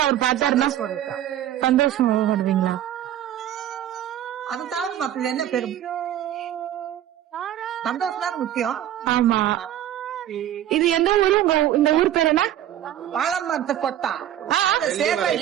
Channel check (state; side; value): quieter; left; 11.6 dB